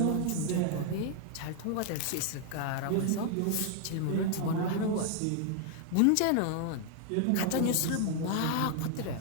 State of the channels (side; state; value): both; different; correlation 0.00